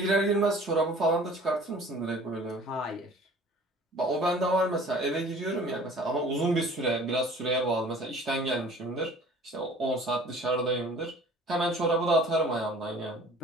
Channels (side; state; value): both; normal; correlation 0.49